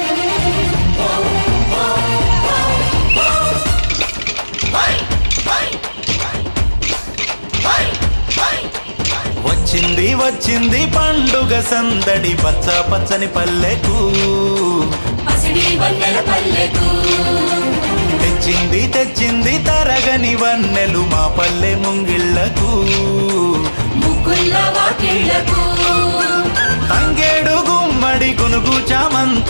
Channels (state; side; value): inverted; both; correlation -1.00